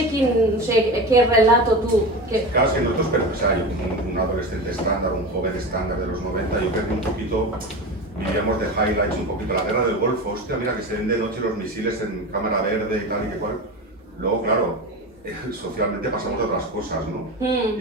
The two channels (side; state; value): both; normal; correlation 0.26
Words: qué relato tú... Claro, es que nosotros, pero hay un adolescente estándar, un joven estándar de los 90, yo creo que un poquito vivíamos de highlights, un poquito la guerra del Golfo, hostia, mira que se ven de noche los misiles en cámara verde y tal y que cual. Luego, claro, socialmente pasamos de otras cosas, ¿no?